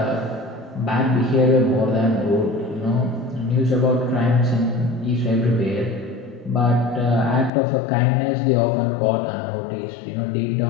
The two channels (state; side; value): drops out; right; at 7.5 s